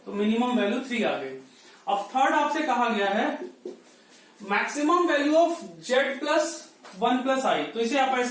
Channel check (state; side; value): identical; both; correlation 1.00